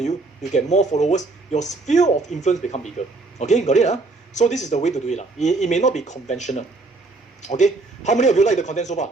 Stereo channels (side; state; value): left; quieter; 3.4 dB